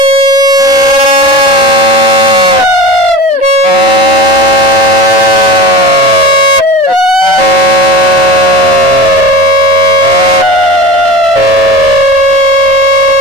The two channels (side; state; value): both; normal; correlation 0.32